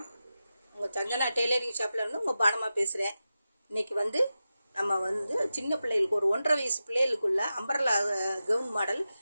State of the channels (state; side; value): inverted; both; correlation -0.92